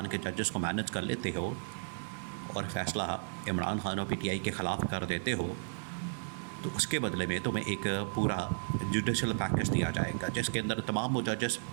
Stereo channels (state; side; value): silent; left; digital silence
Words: के जजेस को मैनेज कर लेते हो और फ़ैसला इमरान खान और पीटीआई के ख़िलाफ़ कर देते हो तो उसके बदले में तुम्हें एक पूरा जुडिशल पैकेज दिया जाएगा जिसके अंदर तमाम वो जजेस